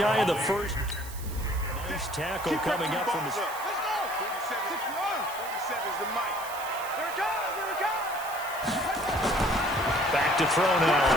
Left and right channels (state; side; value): noise; right; hiss, 14 dB below the sound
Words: of the first. Nice tackle coming up from his... Let's go! 47 is the mic. Here it comes, here it comes! Back to throw now